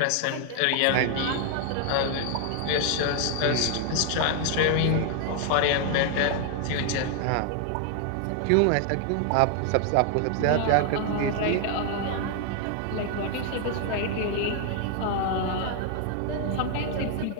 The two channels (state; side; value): different; both; correlation 0.00